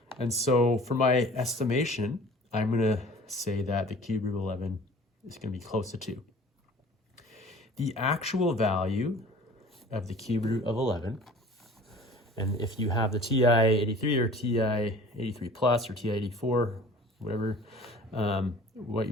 And so for my estimation, I'm going to say that the cube root of 11 is going to be close to 2. The actual value of the cube root of 11, and if you have the TI-83 or TI-83 plus or TI-84, whatever, what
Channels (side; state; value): both; normal; correlation 0.46